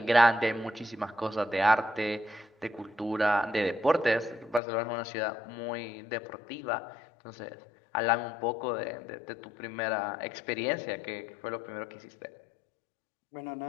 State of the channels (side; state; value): right; drops out; at 4.6 s